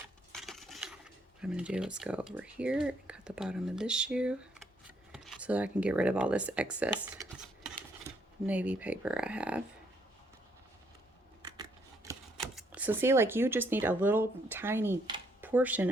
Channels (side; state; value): both; normal; correlation 0.71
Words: I'm going to do is go over here and cut the bottom of this shoe so that I can get rid of all this excess navy paper I have. So see, like, you just need a little tiny portion